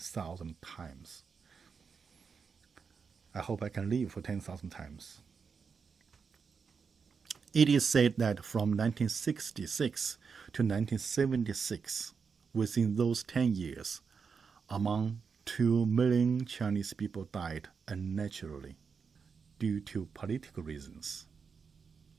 times. I hope I can live for 10,000 times. It is said that from 1966 to 1976, within those 10 years, among 2 million Chinese people died unnaturally due to political reasons.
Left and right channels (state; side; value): quieter; left; 5.7 dB